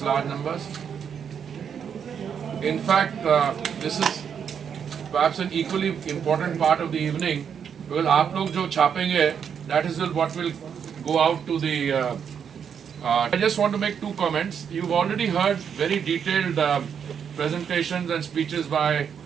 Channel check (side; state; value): left; quieter; 7.6 dB